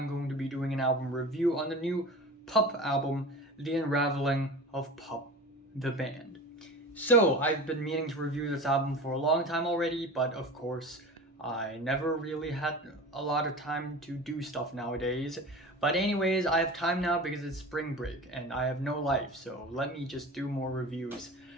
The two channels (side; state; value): both; normal; correlation 0.34